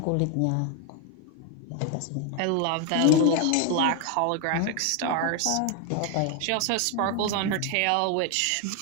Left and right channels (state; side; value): different; both; correlation 0.01